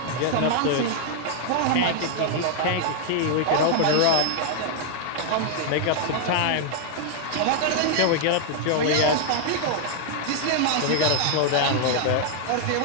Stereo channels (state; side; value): different; both; correlation 0.00